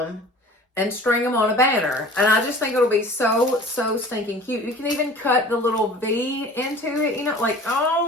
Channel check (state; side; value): normal; both; correlation 0.43